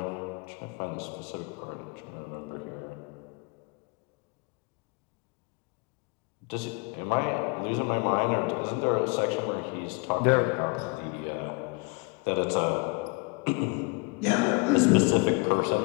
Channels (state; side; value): quieter; right; 29.3 dB